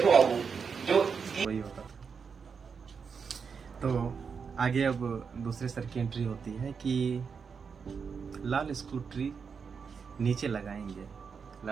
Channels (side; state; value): left; quieter; 5.9 dB